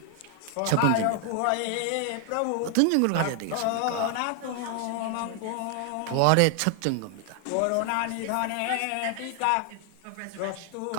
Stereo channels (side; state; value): both; different; correlation 0.00